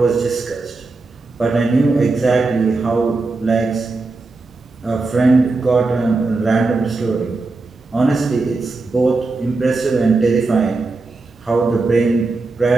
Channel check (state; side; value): quieter; left; 3.6 dB